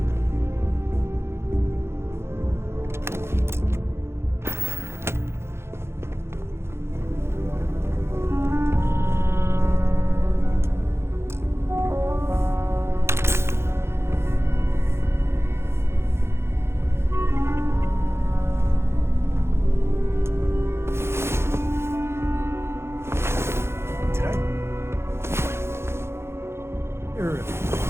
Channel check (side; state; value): left; late; 0.12 ms